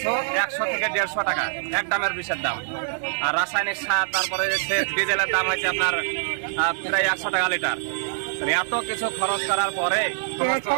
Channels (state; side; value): silent; left; digital silence